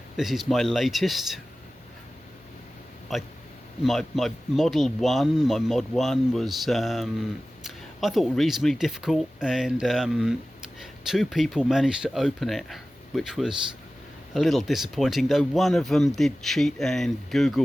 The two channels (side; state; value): both; normal; correlation 0.96